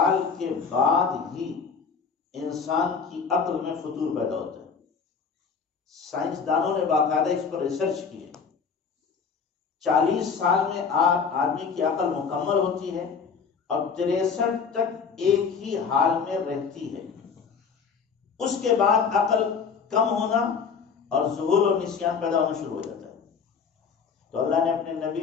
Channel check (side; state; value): right; quieter; 5.8 dB